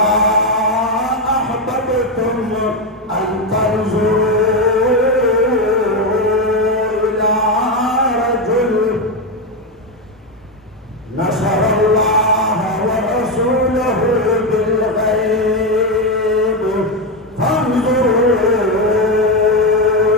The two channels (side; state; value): both; normal; correlation 0.09